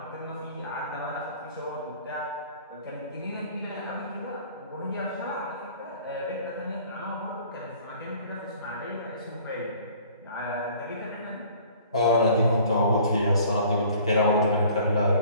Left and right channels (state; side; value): inverted; both; correlation -0.52